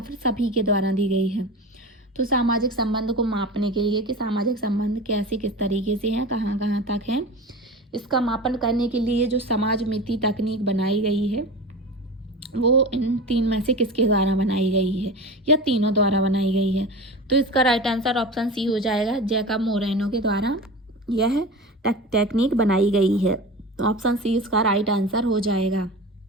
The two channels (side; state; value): both; normal; correlation 0.31